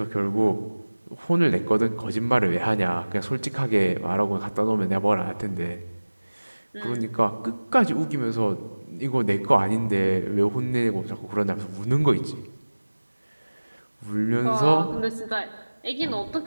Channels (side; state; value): both; inverted; correlation -1.00